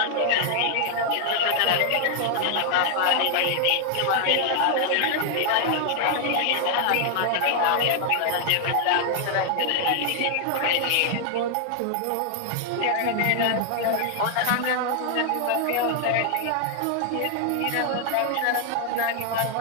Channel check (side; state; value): both; different; correlation 0.00